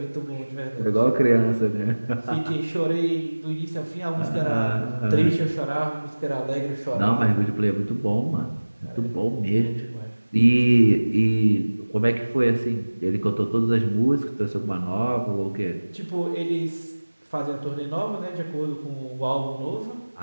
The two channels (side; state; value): both; inverted; correlation -1.00